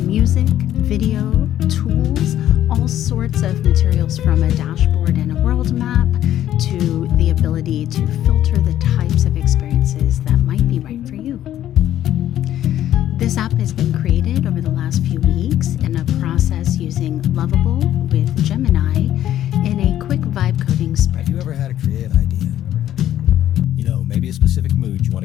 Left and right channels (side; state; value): right; quieter; 12.0 dB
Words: music, video, tools, all sorts of materials from a dashboard and a world map to the ability to filter the types of experiences that might be right for you. This app has been created over the last few weeks in a process using Lovable with Gemini in a quick vibe coding sprint. Have you ever had a creative idea? You know, maybe a specific mood you